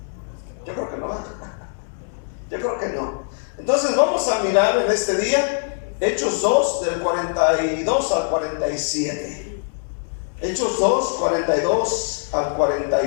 Yo creo que no. Yo creo que no. Entonces vamos a mirar en este día Hechos 2 del 42 al 47. Hechos 2, 42 al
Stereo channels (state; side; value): silent; right; digital silence